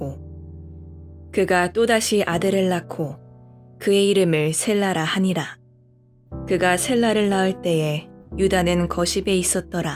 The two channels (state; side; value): identical; both; correlation 1.00